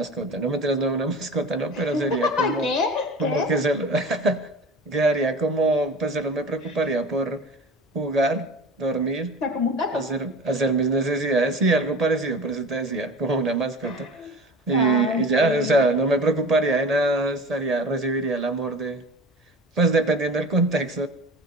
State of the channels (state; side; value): normal; both; correlation 0.36